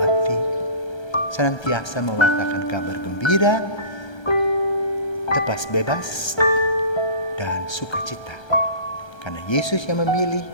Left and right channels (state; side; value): late; right; 1.3 ms